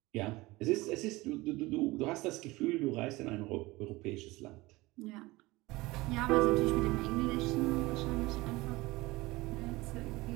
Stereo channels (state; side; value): quieter; left; 20.9 dB